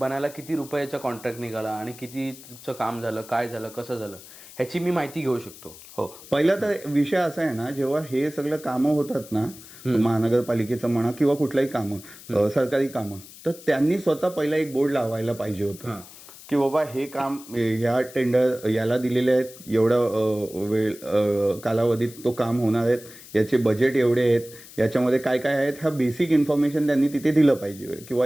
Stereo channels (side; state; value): left; noise; hiss, 18 dB below the sound